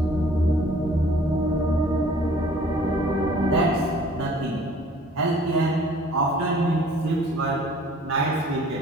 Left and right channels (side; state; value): both; normal; correlation 0.53